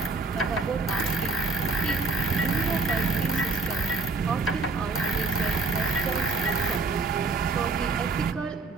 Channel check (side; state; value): left; quieter; 3.7 dB